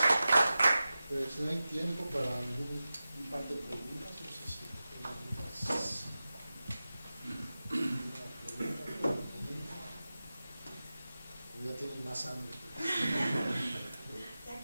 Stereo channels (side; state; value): both; inverted; correlation -0.94